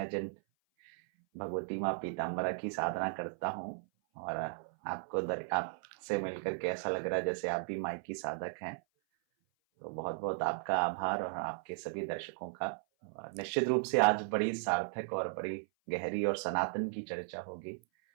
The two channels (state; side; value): silent; left; 54 dB below the other